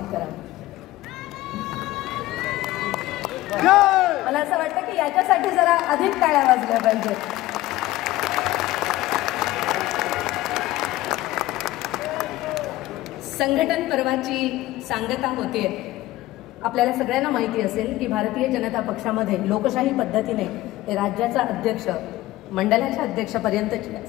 करावं। मला असं वाटतं की याच्यासाठी जरा अधिक टाळ्या वाजल्या पाहिजेत। संघटन पर्वाची सांगता होते। आपल्याला सगळ्यांना माहिती असेल की भारतीय जनता पक्षामध्ये लोकशाही पद्धतीने राज्याचा अध्यक्ष मंडळाच्या अध्यक्षापर्यंत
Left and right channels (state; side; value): quieter; right; 16.9 dB